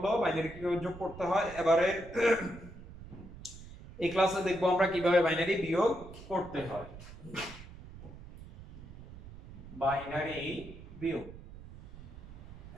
বাইনারি কিভাবে যোগ করতে হয়। এবারে এই ক্লাসে দেখব আমরা কিভাবে বাইনারি বিয়োগ করতে হয়। বাইনারি বিয়োগ,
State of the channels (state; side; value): noise; right; rumble, 15 dB below the sound